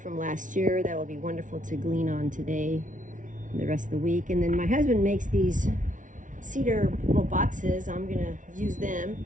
last year that will be wonderful to glean on today and the rest of the week. And then my husband makes these cedar little boxes. I'm going to use them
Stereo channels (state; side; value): late; left; 0.37 ms